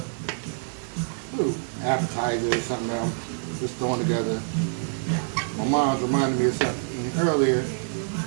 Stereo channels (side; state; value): left; silent; digital silence